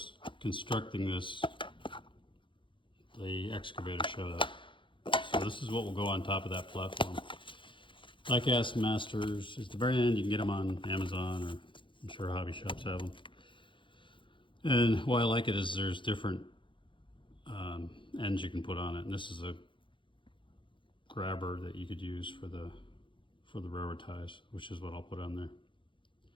constructing this, the excavator showed up. So this is what will go on top of that platform. Die-cast masters. At the very end, you can get them on Amazon, or I'm sure hobby shops have them. And why I like it is there's different ends you can put on it. And this is a grabber that you could use for the railroad ties, which is what I'll put on there.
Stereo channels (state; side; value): late; right; 0.24 ms